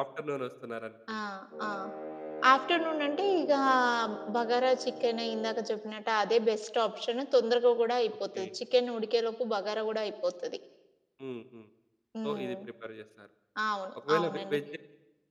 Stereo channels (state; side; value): identical; both; correlation 1.00